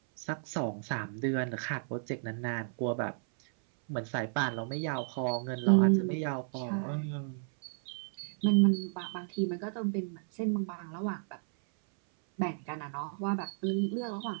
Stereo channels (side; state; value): left; silent; 56 dB below the other